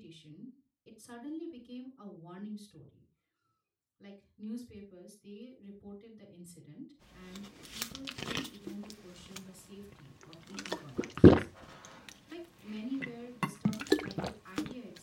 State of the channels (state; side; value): identical; both; correlation 1.00